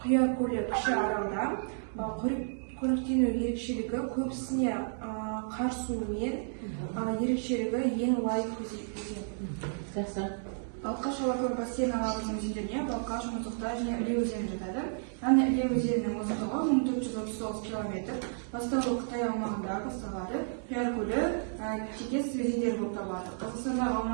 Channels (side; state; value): left; silent; digital silence